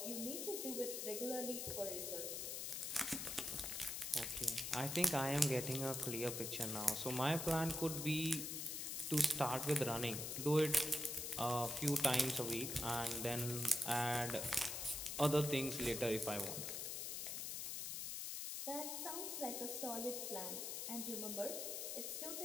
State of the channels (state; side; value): noise; left; hiss, 3 dB below the sound